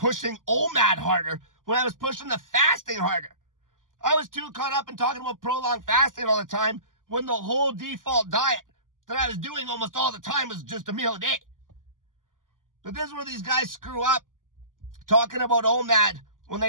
OMAD harder when I was pushing the fasting harder. I was too caught up in talking about prolonged fasting all the time when the whole default diet that I was doing almost all the time was just a meal a day. But this is where these guys screw up, talking about OMAD when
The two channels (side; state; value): left; late; 0.89 ms